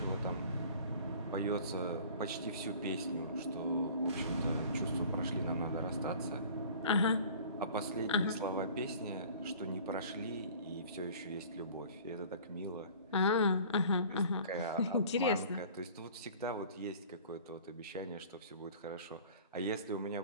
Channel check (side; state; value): both; inverted; correlation -0.46